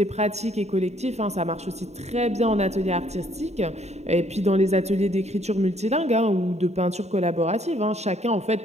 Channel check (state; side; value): late; left; 0.32 ms